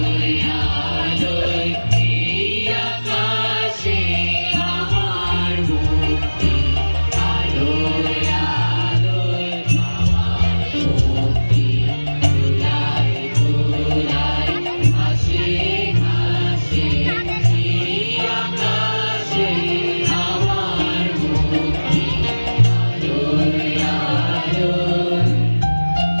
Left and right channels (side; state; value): both; inverted; correlation -1.00